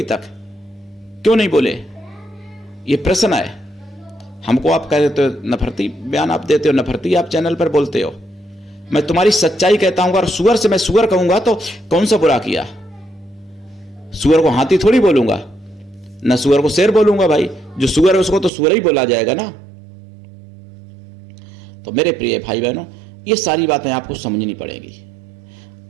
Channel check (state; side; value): drops out; left; at 18.5 s